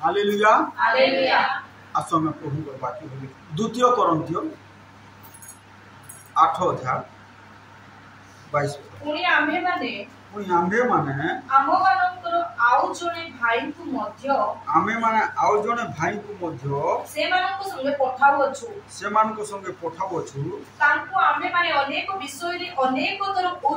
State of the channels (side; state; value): both; identical; correlation 1.00